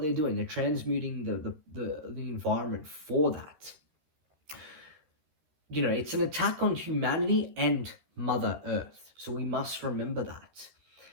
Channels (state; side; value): late; left; 13 ms